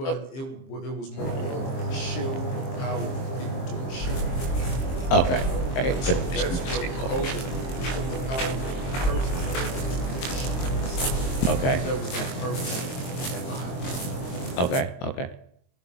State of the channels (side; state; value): right; late; 23 ms